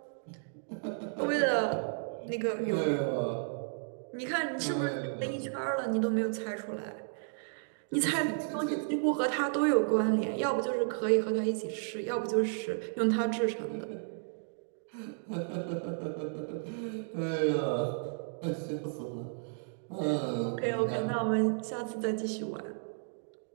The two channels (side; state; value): left; silent; digital silence